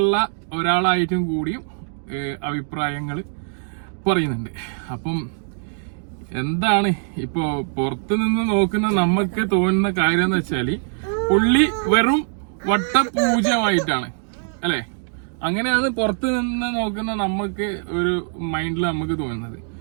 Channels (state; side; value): silent; left; 64 dB below the other